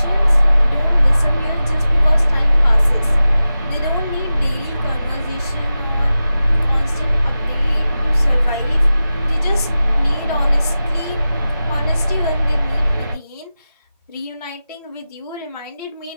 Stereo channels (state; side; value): inverted; both; correlation -0.93